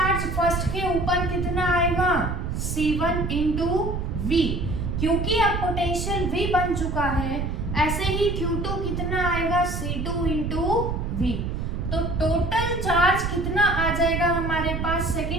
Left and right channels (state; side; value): noise; right; rumble, 2 dB below the sound